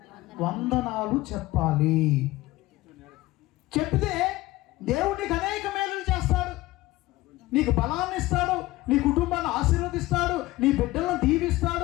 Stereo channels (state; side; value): quieter; right; 18.5 dB